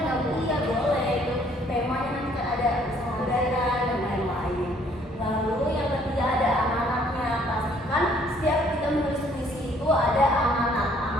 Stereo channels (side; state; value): both; normal; correlation 0.62